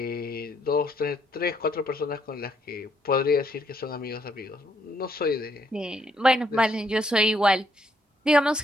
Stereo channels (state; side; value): normal; both; correlation 0.71